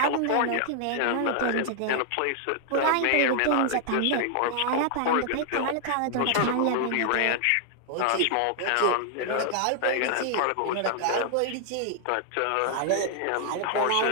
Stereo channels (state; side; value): different; both; correlation 0.00